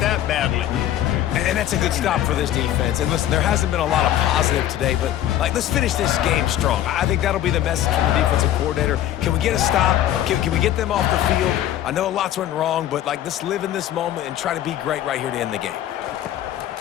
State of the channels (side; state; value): right; quieter; 12.2 dB